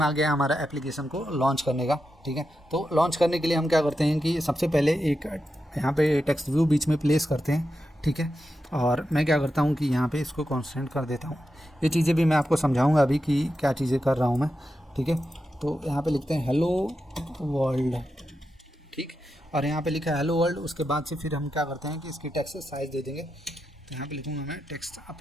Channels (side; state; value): both; normal; correlation 0.88